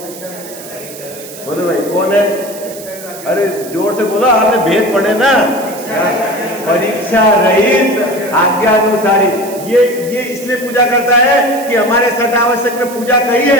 बोलो भाई कौन है? अरे जोर से बोलो, आपने भेद पढ़े ना, परीक्षा रहित आज्ञानुसारी। ये इसलिए पूजा करता है कि हमारे सठ आवश्यक में पूजा कही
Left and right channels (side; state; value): right; noise; hiss, 15 dB below the sound